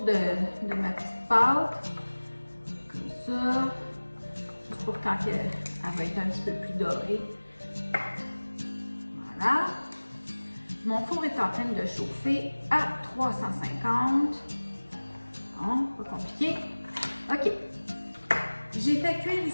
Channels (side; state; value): both; inverted; correlation -1.00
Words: de ma petite pâte, comme ça, juste pour quand elle va être un petit peu plus dorée. Voilà. Mon four est en train de chauffer à 350. Bon, pas compliqué. OK. J'ai fait cuire